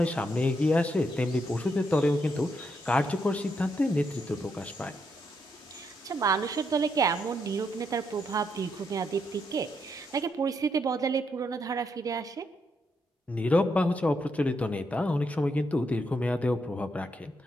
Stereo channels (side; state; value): both; normal; correlation 0.78